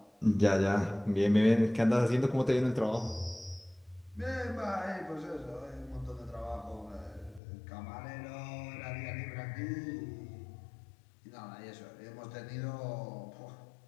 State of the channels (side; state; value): right; drops out; at 7.4 s